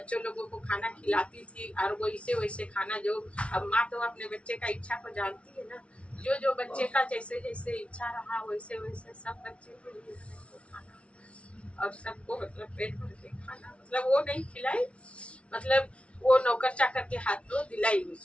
लोगों को खाना खिलाती थी। और वैसे वैसे खाना जो अब माँ तो अपने बच्चे का इच्छा को जानती है ना, जो जो बच्चे का जैसे जैसे इच्छा रहा वैसे वैसे सब बच्चे के लिए खाना और सबको मतलब पेट भर के खाना, मतलब वो नहीं खिलाई, मतलब वो नौकर चाकर के हाथ में दिलाई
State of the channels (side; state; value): right; late; 0.061 ms